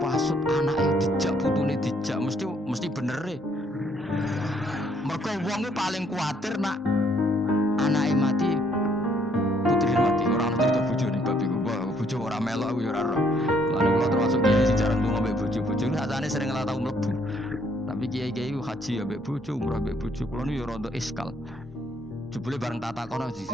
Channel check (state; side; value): normal; both; correlation 0.67